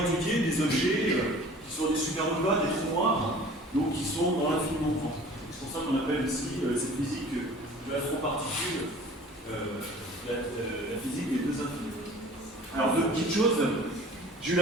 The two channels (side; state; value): both; normal; correlation 0.46